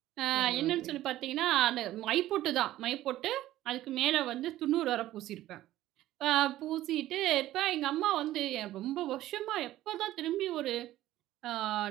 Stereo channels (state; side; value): quieter; left; 14.6 dB